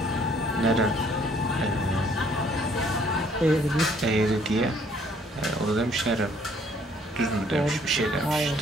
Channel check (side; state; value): both; normal; correlation 0.62